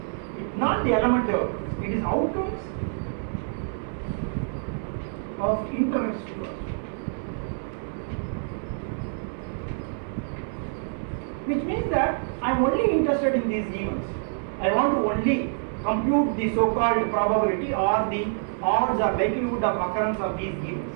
not the elementary outcomes, it is outcomes of interest to us. Which means that I am only interested in these events. I want to only compute the so-called probability or the odds or likelihood of occurrence of these events,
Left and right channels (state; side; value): silent; left; 60 dB below the other